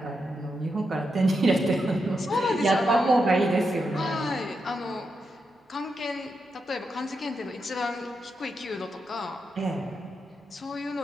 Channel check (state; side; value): normal; both; correlation 0.85